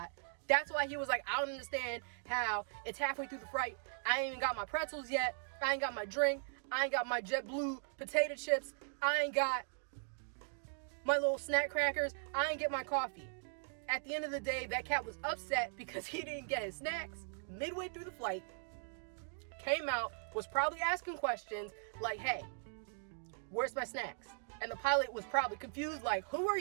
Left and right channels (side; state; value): left; silent; digital silence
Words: That's why he was like, I don't understand how it's halfway through the flight. I ain't even got my pretzels yet. I ain't got my drink. I ain't got my JetBlue potato chips. I ain't got my little snack crackers. I ain't get my coffee. At the end of the day, that cat was upset because he didn't get his snacks midway through the flight. Came out, was probably asking questions like, hey, where's my snacks? And the pilot was probably confused, like, who are